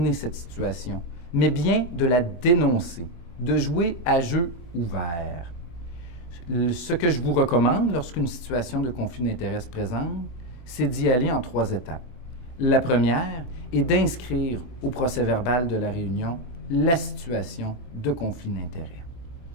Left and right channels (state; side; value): late; right; 24 ms